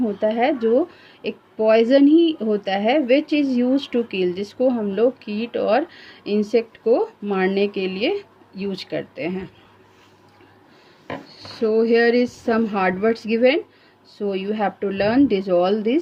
है जो एक poison ही होता है, which is use to kill, जिसको हम लोग कीट और इंसेक्ट को मारने के लिए यूज करते हैं। So here is some hard words given, so you have to learn this all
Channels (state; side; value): identical; both; correlation 1.00